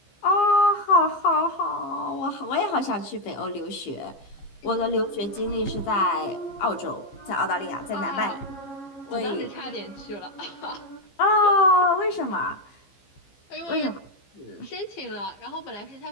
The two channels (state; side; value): late; right; 15 ms